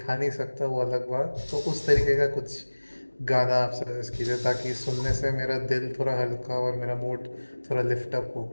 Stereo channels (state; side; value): inverted; both; correlation -1.00